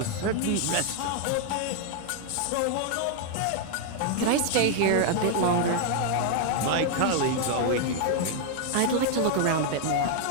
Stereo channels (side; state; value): both; different; correlation 0.00